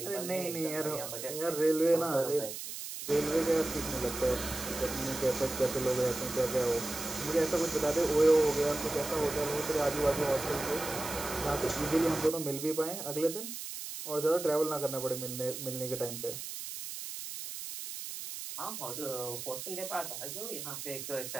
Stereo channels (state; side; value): noise; right; hiss, 8 dB below the sound